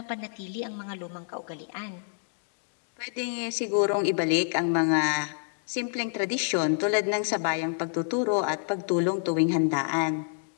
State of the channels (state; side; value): silent; right; digital silence